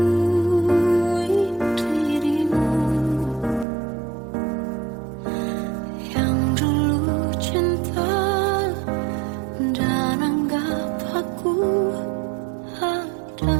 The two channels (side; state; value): left; drops out; at 3.7 s